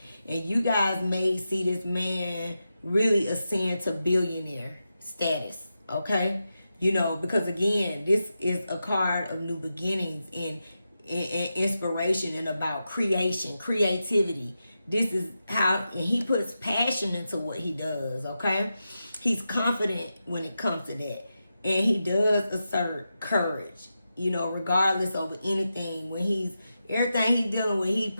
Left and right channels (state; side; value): inverted; both; correlation -0.89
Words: And you guys may see this man really ascend to billionaire status, okay? You know, because again, this is a card of new beginnings and inspiration and about creation, creativity. This is how, and he puts passion into what he does, okay? He's confident when it comes to that. And he does assert courage, you know, regardless of anything. When everything he's dealing with, he